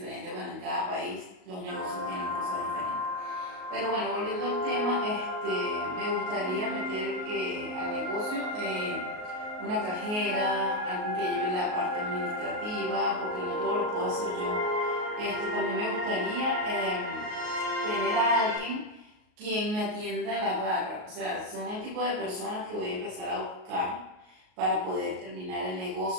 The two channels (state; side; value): late; left; 38 ms